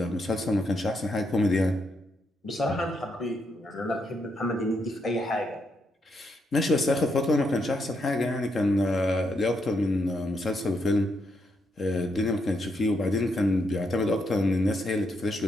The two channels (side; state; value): both; normal; correlation 0.78